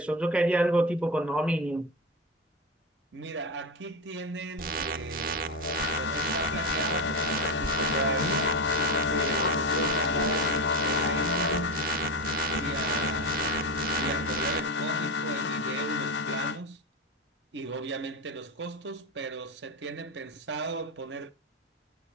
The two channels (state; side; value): normal; both; correlation 0.17